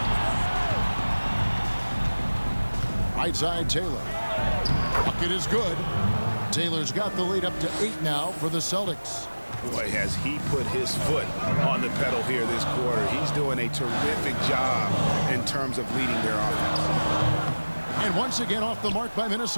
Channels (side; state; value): both; inverted; correlation -1.00